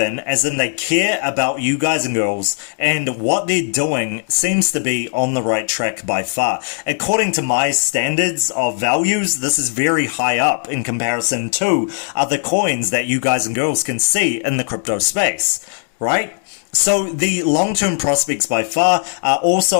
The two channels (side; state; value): right; silent; digital silence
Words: as in they care about you guys and girls, and what they're doing seems to be on the right track by far. According to my standards of values, this is very high up in comparison to other coins that you guys and girls can see in the crypto space, right? So the long-term prospects by far are